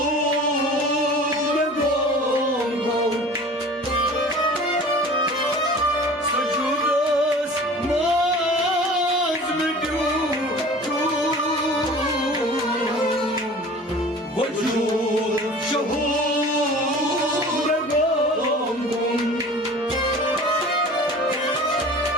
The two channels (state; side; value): normal; both; correlation 0.42